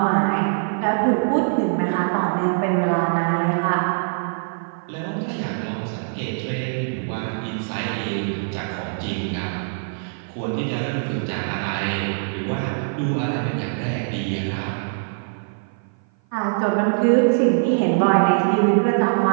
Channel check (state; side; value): silent; left; 56 dB below the other